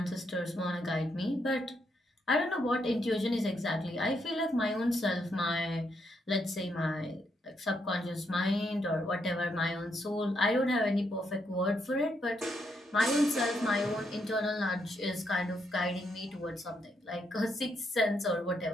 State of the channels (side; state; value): both; normal; correlation 0.78